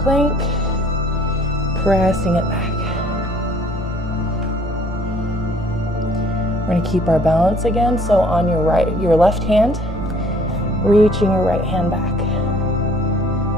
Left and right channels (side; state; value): both; normal; correlation 0.58